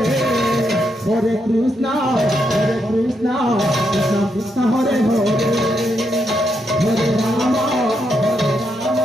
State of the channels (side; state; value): both; normal; correlation 0.80